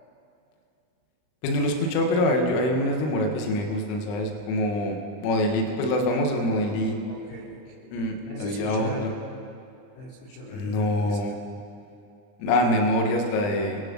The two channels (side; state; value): right; late; 39 ms